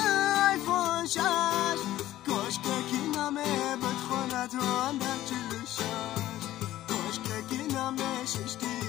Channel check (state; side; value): quieter; right; 14.4 dB